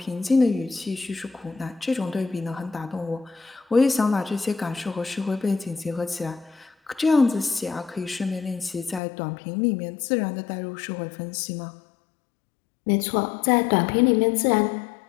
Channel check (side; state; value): right; drops out; at 9.0 s